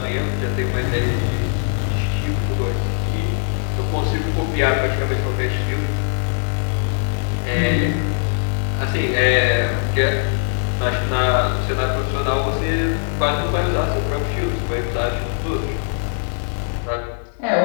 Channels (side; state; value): right; silent; digital silence